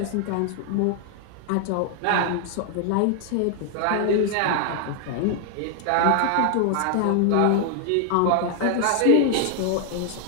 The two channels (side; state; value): both; different; correlation 0.00